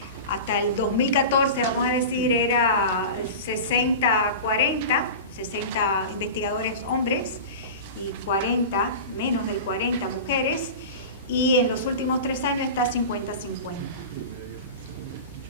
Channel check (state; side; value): inverted; both; correlation -0.30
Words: hasta el 2014, vamos a decir, era 60-40, 60 investigadores hombres y 40, menos del 40 mujeres, y en los últimos 3 años está 50-50.